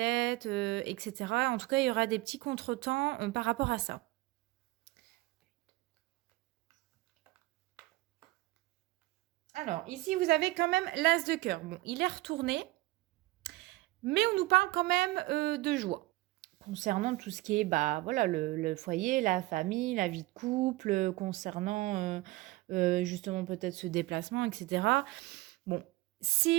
etc. En tout cas, il y aura des petits contretemps par rapport à ça. Alors, ici, vous avez quand même l'as de cœur. Bon, il est retourné, mais on nous parle quand même de joie. Concernant tout ce qui est, bah, voilà, le foyer, la famille, la vie de couple, concernant justement peut-être ce déplacement, etc. Bon,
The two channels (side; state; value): left; quieter; 19.6 dB